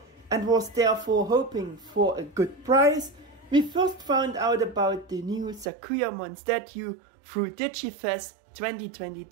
and was therefore hoping for a good price. We first found out about the new Sakuyamon statue through DigiFest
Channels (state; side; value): drops out; left; at 5.7 s